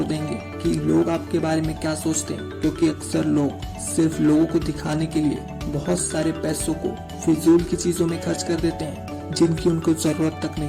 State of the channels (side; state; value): both; identical; correlation 1.00